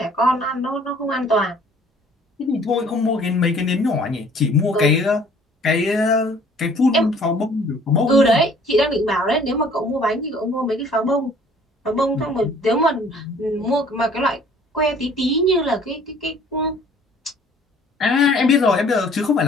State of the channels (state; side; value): normal; both; correlation 0.55